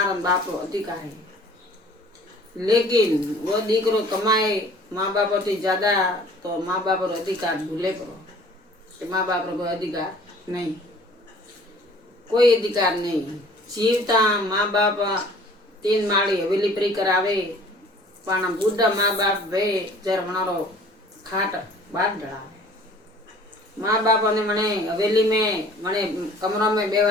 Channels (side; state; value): both; normal; correlation 0.51